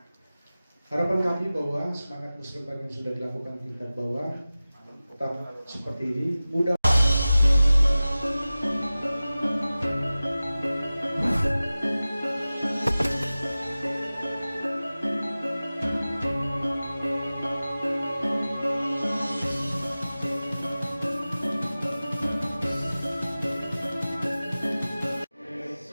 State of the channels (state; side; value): inverted; both; correlation -0.97